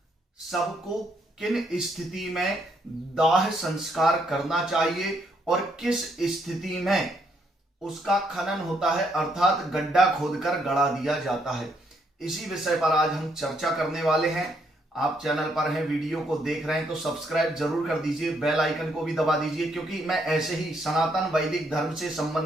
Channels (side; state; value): both; normal; correlation 0.73